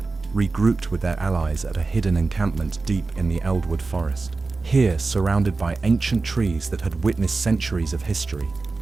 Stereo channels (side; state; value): left; quieter; 3.8 dB